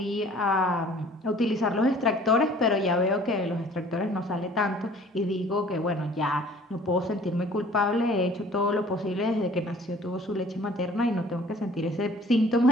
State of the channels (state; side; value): normal; both; correlation 0.51